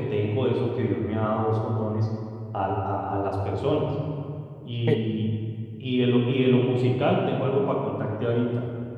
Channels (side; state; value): both; identical; correlation 1.00